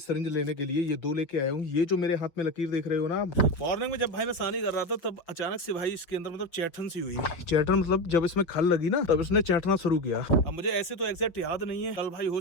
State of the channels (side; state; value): right; late; 6.2 ms